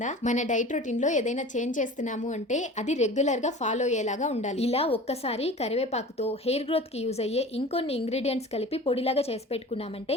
మన డైట్ రొటీన్ లో ఏదైనా చేంజ్ చేస్తున్నాము అంటే అది రెగ్యులర్ గా ఫాలో అయ్యేలాగా ఉండాలి. ఇలా ఒక్కసారి కరివేపాకుతో హెయిర్ గ్రోత్ కి యూజ్ అయ్యే ఇంకొన్ని ఇంగ్రీడియంట్స్ కలిపి పొడిలాగా చేసి పెట్టుకున్నామంటే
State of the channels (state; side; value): normal; both; correlation 0.39